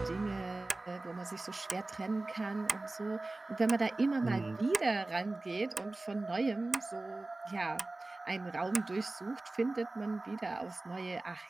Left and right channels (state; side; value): quieter; left; 3.0 dB